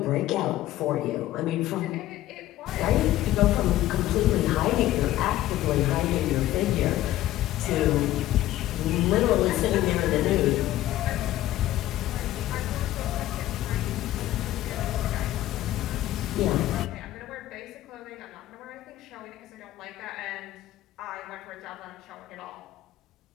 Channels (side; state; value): right; quieter; 14.5 dB